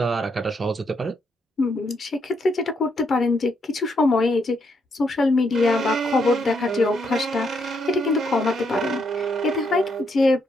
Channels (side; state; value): both; normal; correlation 0.76